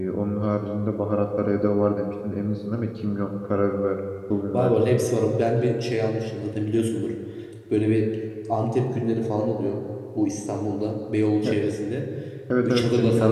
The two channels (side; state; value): both; identical; correlation 1.00